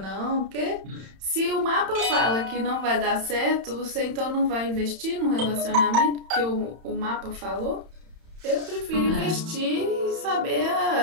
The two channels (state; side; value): late; left; 31 ms